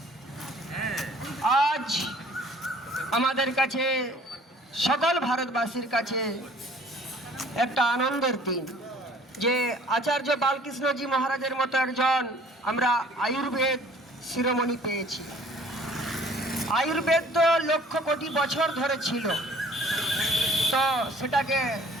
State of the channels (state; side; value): normal; both; correlation 0.54